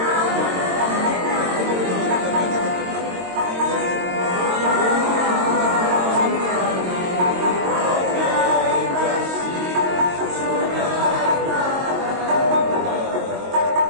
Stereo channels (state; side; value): late; left; 22 ms